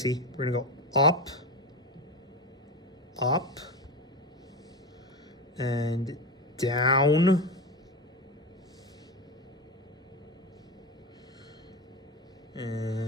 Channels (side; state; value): both; normal; correlation 0.19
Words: We're gonna go up, up, and down.